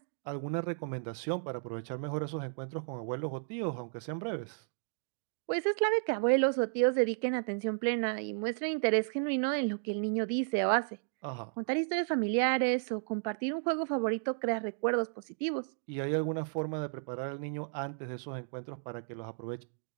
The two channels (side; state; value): left; silent; digital silence